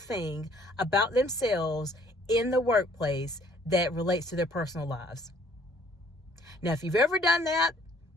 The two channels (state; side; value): normal; both; correlation 0.60